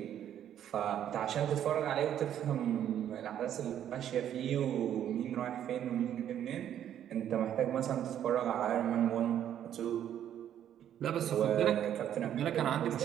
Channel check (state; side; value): quieter; left; 10.4 dB